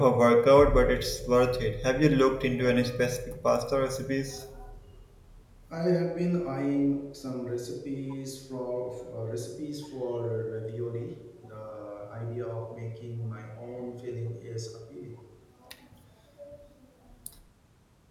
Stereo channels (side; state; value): both; identical; correlation 1.00